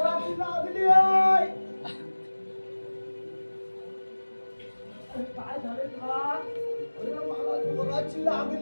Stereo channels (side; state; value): both; inverted; correlation -1.00